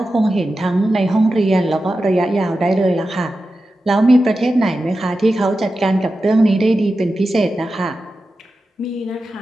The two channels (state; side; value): normal; both; correlation 0.92